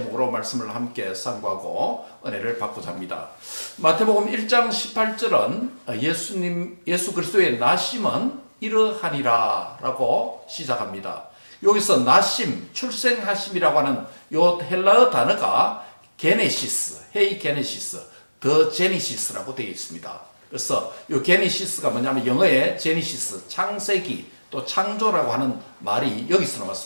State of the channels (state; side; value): inverted; both; correlation -1.00